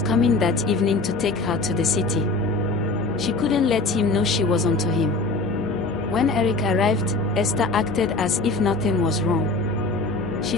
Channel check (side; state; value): right; quieter; 3.4 dB